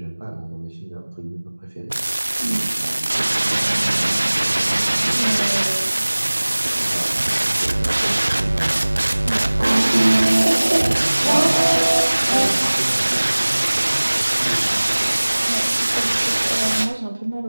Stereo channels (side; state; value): both; inverted; correlation -1.00